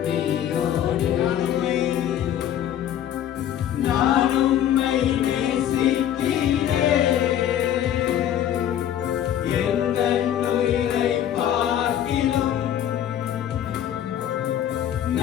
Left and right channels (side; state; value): right; quieter; 10.6 dB